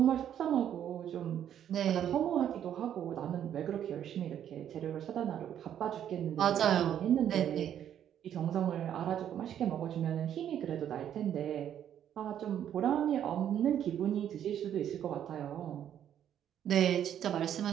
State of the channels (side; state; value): left; quieter; 10.0 dB